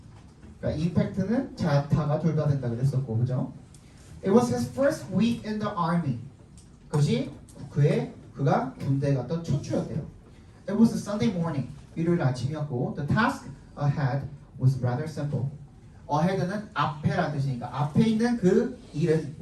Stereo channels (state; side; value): identical; both; correlation 1.00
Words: 그러니까 임팩트는 자타가 둘 다 된다 그랬었고, 그죠? It was his first week in the army. 그것이 그가 군대에 갔던 첫 주였대요. It was a Sunday morning. 일요일 아침이었고, the task ahead was rather simple. ahead는 앞에라는 뜻이니까 앞에 있는 그 일은